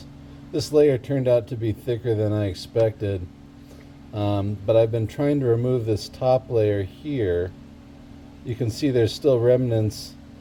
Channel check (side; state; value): both; identical; correlation 1.00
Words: layer turned out to be thicker than I expected. But I've been trying to remove this top layer here. You can see there's still remnants,